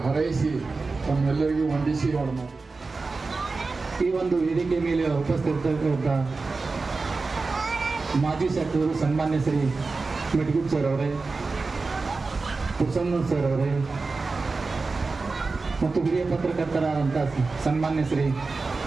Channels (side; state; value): left; quieter; 4.0 dB